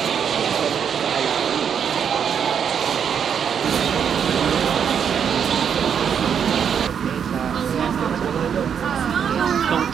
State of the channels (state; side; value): quieter; left; 7.7 dB